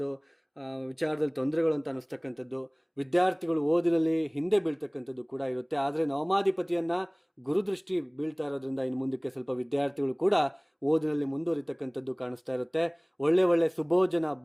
ವಿಚಾರದಲ್ಲಿ ತೊಂದರೆಗಳು ಅಂತ ಅನ್ನಿಸ್ತಕ್ಕಂಥದ್ದು, ವಿದ್ಯಾರ್ಥಿಗಳು ಓದಿನಲ್ಲಿ ಹಿಂದೆ ಬೀಳ್ತಕ್ಕಂಥದ್ದು ಕೂಡ ಇರುತ್ತೆ. ಆದರೆ ನವಮಾಧಿಪತಿಯನ್ನ ಗುರುದೃಷ್ಟಿ ಬೀಳ್ತಾ ಇರೋದ್ರಿಂದ ಇನ್ನು ಮುಂದಕ್ಕೆ ಸ್ವಲ್ಪ ವಿದ್ಯಾರ್ಥಿಗಳು ಕೂಡ ಓದಿನಲ್ಲಿ ಮುಂದುವರಿತಕ್ಕಂಥದ್ದು ಕಾಣಿಸ್ತಾ ಇರುತ್ತೆ. ಒಳ್ಳೆ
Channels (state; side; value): identical; both; correlation 1.00